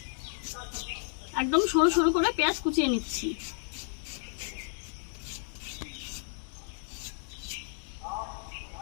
একদম সরু সরু করে পেঁয়াজ কুচিয়ে নিচ্ছি।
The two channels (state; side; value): silent; right; digital silence